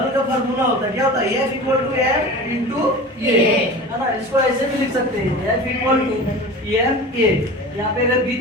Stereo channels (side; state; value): both; normal; correlation 0.35